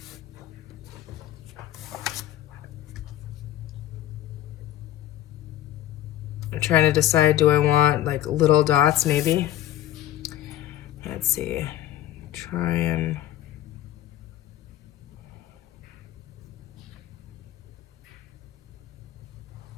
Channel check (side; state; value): right; quieter; 13.1 dB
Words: I'm trying to decide, do I want like little dots maybe? Let's see. Try and...